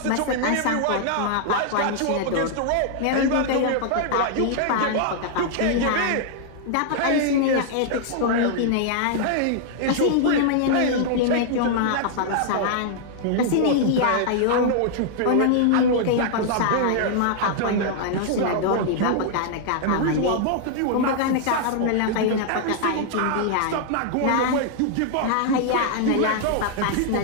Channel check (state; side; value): different; both; correlation -0.01